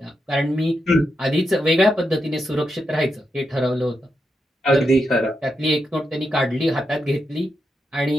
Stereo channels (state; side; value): normal; both; correlation 0.85